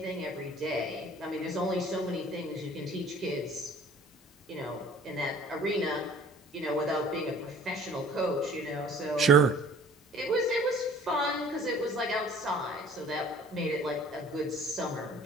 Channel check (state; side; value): normal; both; correlation 0.50